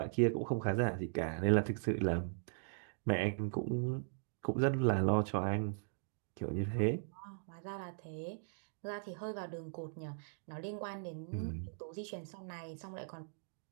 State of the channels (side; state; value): left; silent; digital silence